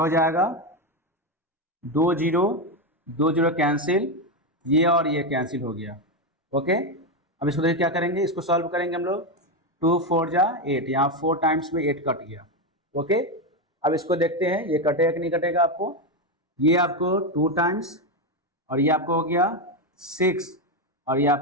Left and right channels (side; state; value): both; normal; correlation 0.09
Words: हो जाएगा 2 0 कैंसिल, ये और ये कैंसिल हो गया। ओके, अब इसको देखिए क्या करेंगे, इसको सॉल्व करेंगे हम लोग। 2 4 जा 8, यहाँ 4 टाइम्स में 8 कट गया। ओके, अब इसको देखते हैं ये कटेगा कि नहीं कटेगा आपको। ये आपको 2 टाइम्स और ये आपको हो गया 6 और ये